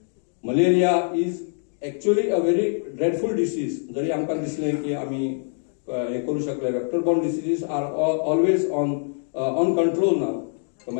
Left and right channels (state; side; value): silent; right; 61 dB below the other